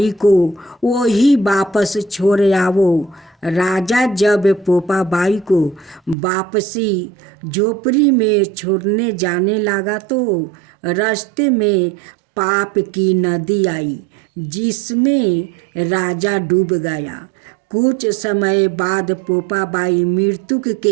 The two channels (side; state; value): left; drops out; at 6.2 s